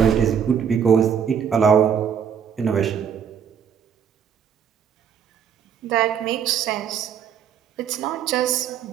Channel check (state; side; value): quieter; left; 7.8 dB